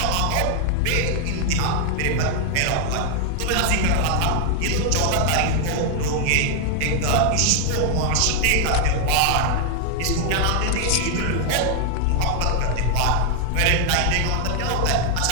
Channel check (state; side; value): different; both; correlation 0.00